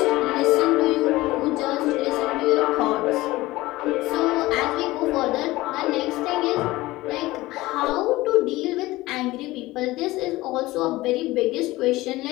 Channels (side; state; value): right; quieter; 18.9 dB